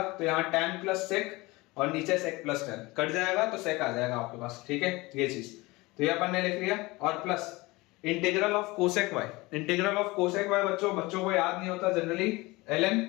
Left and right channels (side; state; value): right; quieter; 22.3 dB